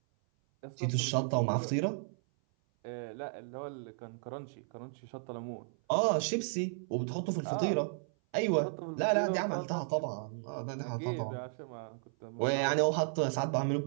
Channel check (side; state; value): left; silent; 55 dB below the other